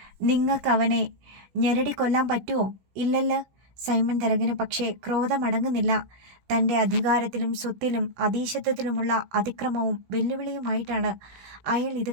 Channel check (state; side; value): late; left; 16 ms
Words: നിങ്ങൾക്കവനെ ഞെരടി കൊല്ലാൻ പറ്റുമോ? ഇല്ലല്ലോ. സൈമൺ തരകന് പക്ഷേ ക്രോധമടങ്ങുന്നില്ല. തൻ്റെ അധികാരത്തിലും സ്വത്തിലും അധീശത്വത്തിലുമുള്ള അതിക്രമവും വെല്ലുവിളിയുമായിട്ടാണ് അയാൾ ഇത്